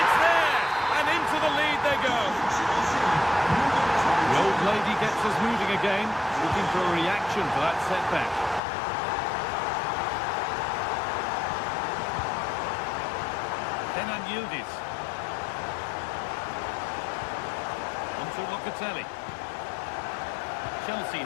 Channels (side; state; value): right; drops out; at 8.6 s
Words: there. And into the lead they go. The old lady gets us moving again. Looking for a reaction for that setback. Yildiz. On to Locatelli. Chelsea